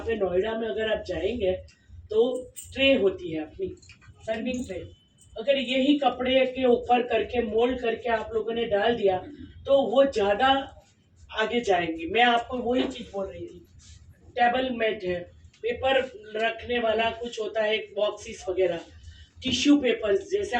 नोएडा में अगर आप जाएंगे तो ट्रे होती है अपनी सर्विंग ट्रे, अगर यही कपड़े के ऊपर करके मोल्ड करके आप लोगों ने डाल दिया तो वो ज़्यादा आगे जाएंगी। मैं आपको वही चीज़ बोल रही थी। टेबल मैट है, पेपर रखने वाला कुछ होता है, बॉक्सेस वगैरह, टिश्यू पेपर्स, जैसे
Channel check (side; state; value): both; identical; correlation 1.00